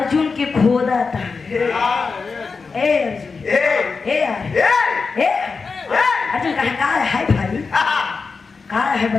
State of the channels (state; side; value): quieter; right; 4.7 dB